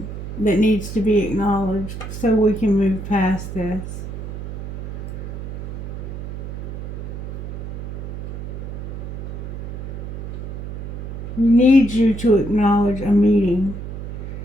that needs to be acknowledged so we can move past this. We need you to acknowledge a meeting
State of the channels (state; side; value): noise; right; hum, 7 dB below the sound